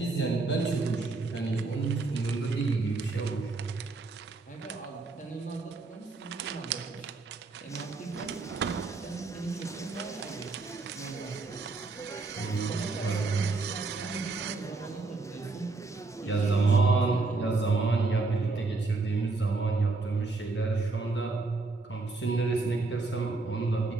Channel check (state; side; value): quieter; left; 3.7 dB